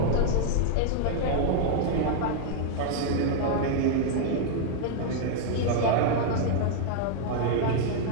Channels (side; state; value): both; different; correlation -0.01